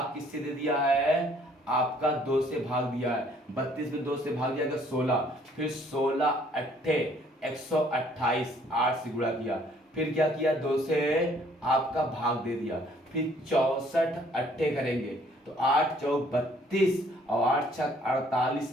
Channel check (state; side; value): normal; both; correlation 0.61